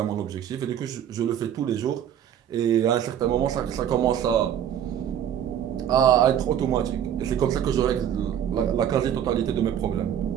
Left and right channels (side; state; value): left; quieter; 9.8 dB